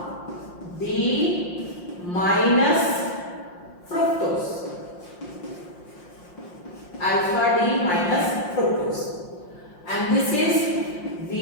D minus fructose. Alpha D minus fructose, and this is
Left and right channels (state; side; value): late; right; 5.7 ms